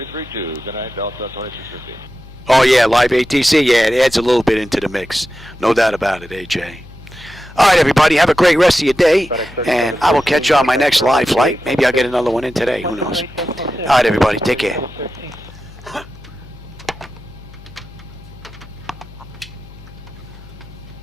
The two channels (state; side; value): noise; left; hum, 19 dB below the sound